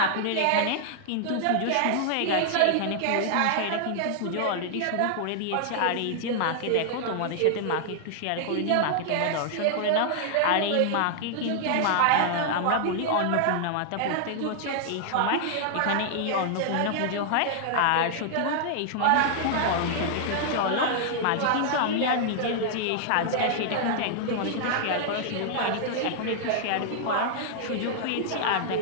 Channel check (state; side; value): different; both; correlation -0.01